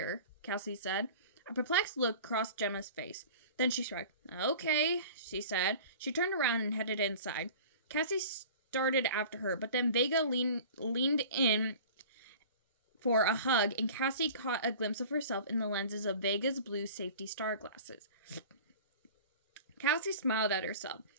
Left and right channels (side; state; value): both; inverted; correlation -0.41